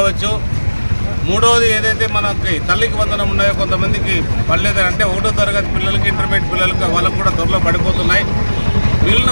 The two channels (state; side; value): inverted; both; correlation -1.00